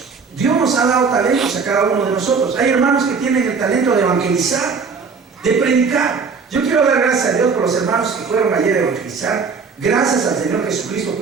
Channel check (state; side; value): quieter; left; 5.2 dB